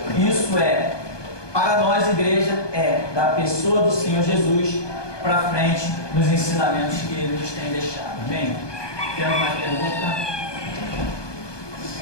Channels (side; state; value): right; late; 1.2 ms